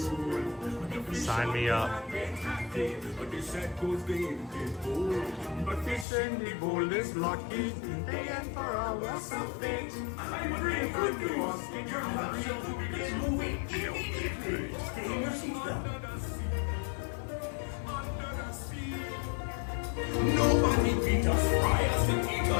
sign me up. dice and the bull is lucky. They and for all was a fate. I'm bringing good news. Your nutshell will begin to wait immediately. Stay in your seatbelt. Nobody beat us, fry us, and eat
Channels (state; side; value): drops out; right; at 6.1 s